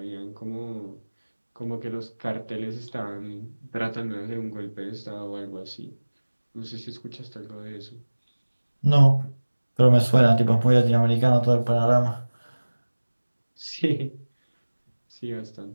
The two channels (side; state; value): both; inverted; correlation -1.00